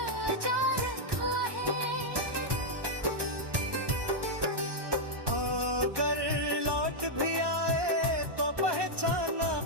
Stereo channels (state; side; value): late; left; 1.2 ms